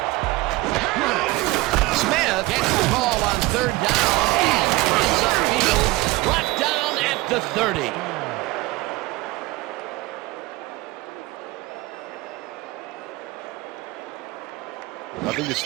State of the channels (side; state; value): left; quieter; 20.4 dB